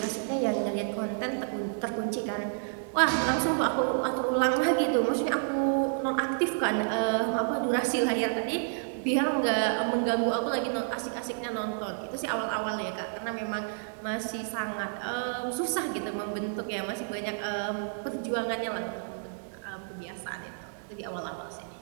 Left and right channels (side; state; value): left; silent; 58 dB below the other